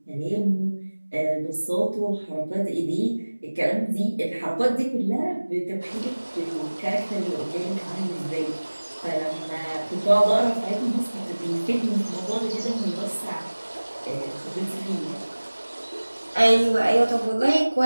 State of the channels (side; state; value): both; inverted; correlation -1.00